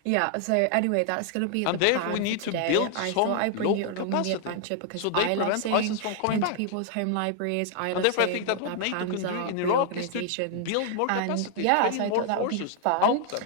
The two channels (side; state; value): both; different; correlation 0.00